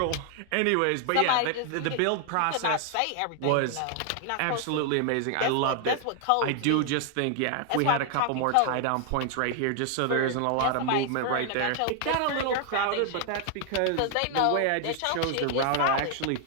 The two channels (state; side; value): different; both; correlation 0.00